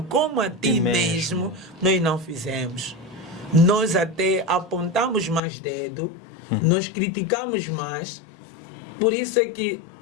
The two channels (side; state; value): right; drops out; at 5.4 s